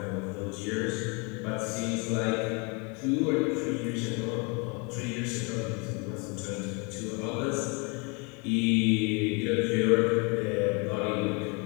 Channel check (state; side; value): quieter; right; 31.9 dB